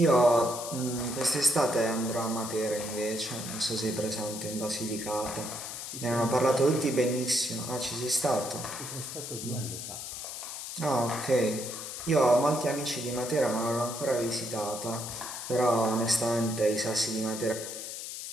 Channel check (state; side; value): noise; left; hiss, 8 dB below the sound